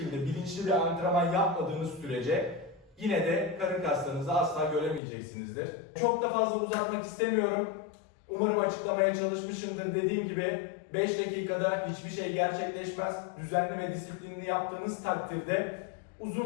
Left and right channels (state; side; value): drops out; right; at 5.0 s